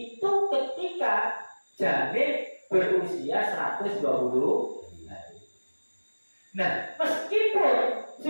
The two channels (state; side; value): inverted; both; correlation -1.00